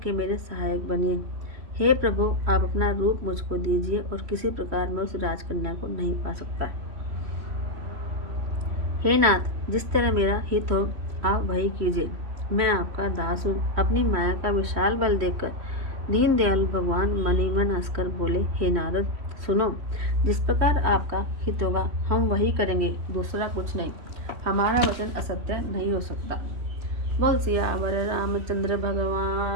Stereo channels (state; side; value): late; left; 3.1 ms